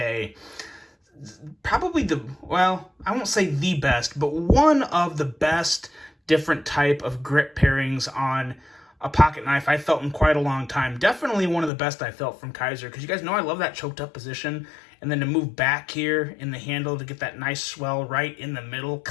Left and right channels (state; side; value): drops out; right; at 11.7 s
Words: probably I won't say the best, but one of the best different type of grip pairings on a pocket knife I felt in quite a long time. Definitely one of the best I felt from Kizer, because you guys know I love that choked up position, and then to move back here in the handle to get that nice swell right in the middle.